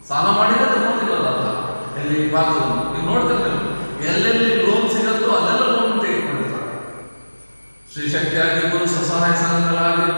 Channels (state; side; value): inverted; both; correlation -1.00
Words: ಸಾಲ ಮಾಡಿದ್ರೆ ತಗೊಂಡಿರೋದ ಎಲ್ಲಿ ಭಾರತ ನೀವು ನೋಡ್ತಾರೆ, ಎಲ್ಲೆಲ್ಲಿ ಲೋನ್ ಸಿಗತ್ತೋ ಅಲ್ಲೆಲ್ಲ ಲೋನ್ ತೆಗೆದುಕೊಂಡಿರ್ತಾರೆ. ಶ್ರೀಶಕ್ತಿ ಆಗಿರ್ಬೋದು, ಸ್ವಸಹಾಯ